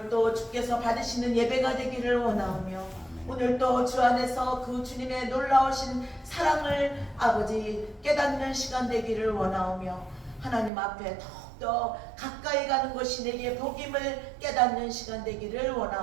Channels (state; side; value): drops out; left; at 10.7 s